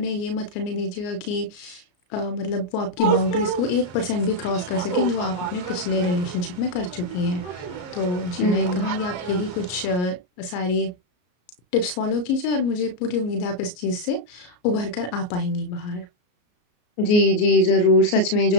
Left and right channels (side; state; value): right; late; 33 ms